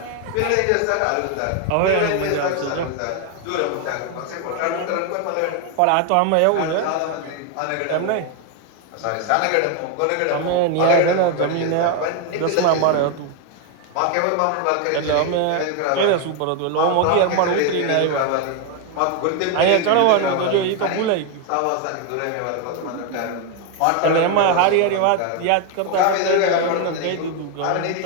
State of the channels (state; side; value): different; both; correlation 0.01